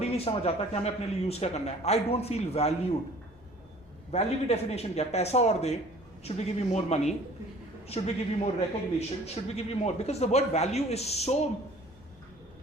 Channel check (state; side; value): normal; both; correlation 0.50